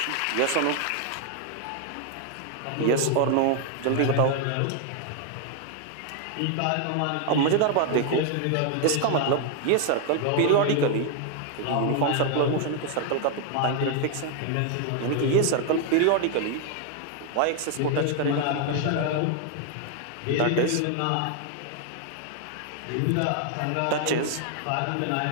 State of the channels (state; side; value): different; both; correlation 0.00